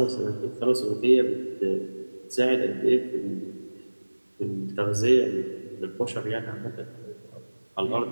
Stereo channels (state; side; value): inverted; both; correlation -1.00